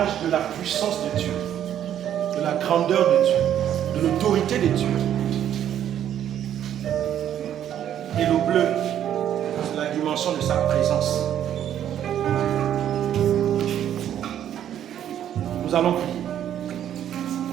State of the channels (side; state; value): left; quieter; 10.5 dB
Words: de la puissance de Dieu. de la grandeur de Dieu, de l'autorité de Dieu. Et le bleu, c'est la dimension de sa présence. Nous allons prier.